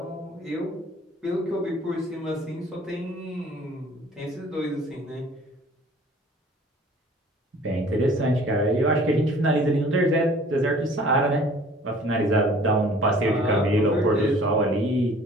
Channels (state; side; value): normal; both; correlation 0.51